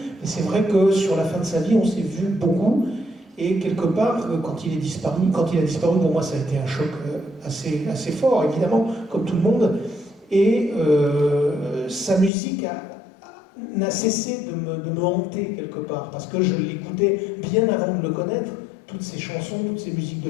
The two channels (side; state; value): right; drops out; at 12.3 s